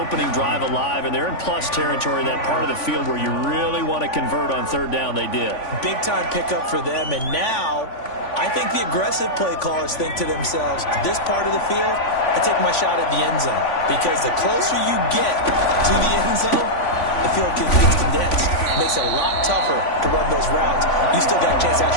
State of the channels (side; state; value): right; late; 3.5 ms